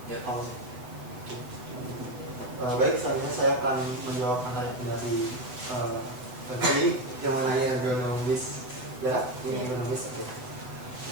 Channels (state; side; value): late; left; 8.0 ms